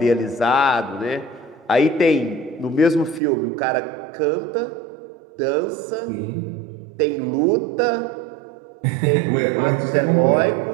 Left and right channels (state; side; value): drops out; left; at 3.2 s